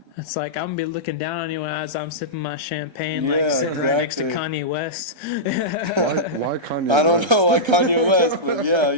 It's like, I'm going to be looking down on you as I'm sipping my champagne, like sitting right next to Kanye West. Why Kanye West? I don't know why Kanye West, but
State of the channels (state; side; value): late; left; 1.3 ms